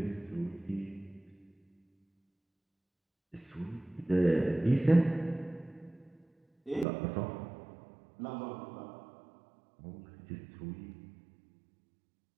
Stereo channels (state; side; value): drops out; left; at 6.9 s